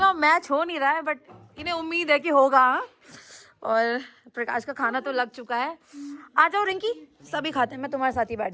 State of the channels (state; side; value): identical; both; correlation 1.00